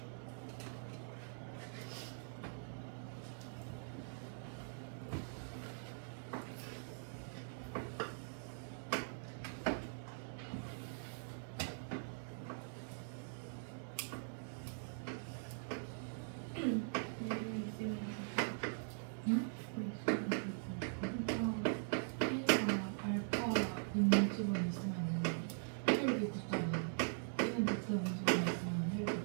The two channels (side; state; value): left; silent; digital silence